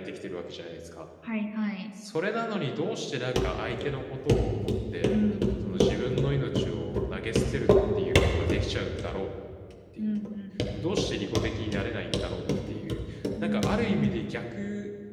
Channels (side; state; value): both; identical; correlation 1.00